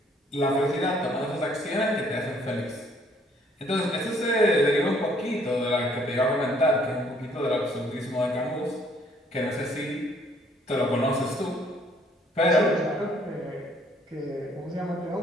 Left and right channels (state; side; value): normal; both; correlation 0.63